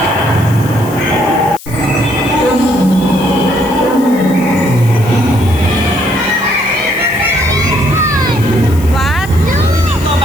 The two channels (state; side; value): noise; left; hiss, 18 dB below the sound